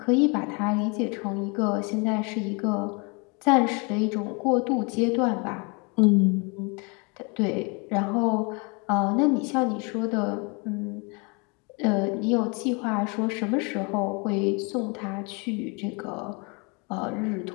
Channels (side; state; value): right; quieter; 31.3 dB